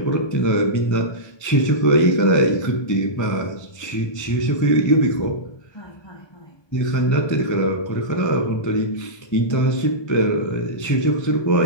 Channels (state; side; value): late; right; 1.2 ms